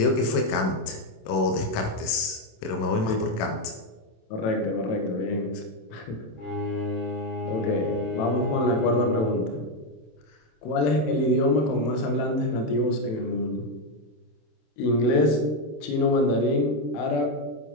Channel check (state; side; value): late; right; 27 ms